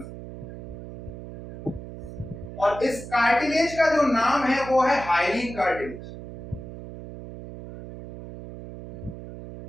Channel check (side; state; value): right; noise; hum, 12 dB below the sound